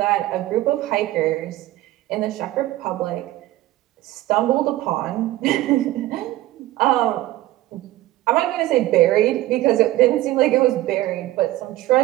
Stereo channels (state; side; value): quieter; left; 16.0 dB